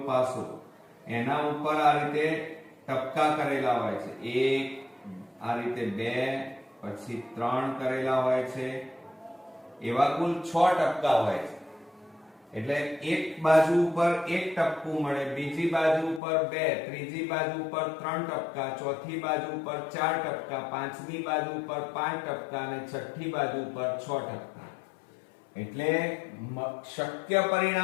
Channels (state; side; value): drops out; right; at 16.2 s